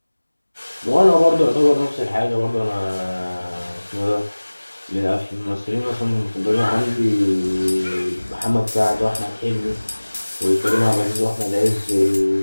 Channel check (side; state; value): both; inverted; correlation -1.00